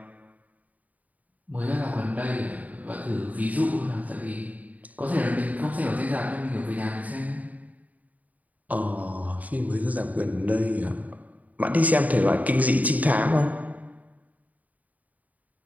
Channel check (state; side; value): late; left; 0.074 ms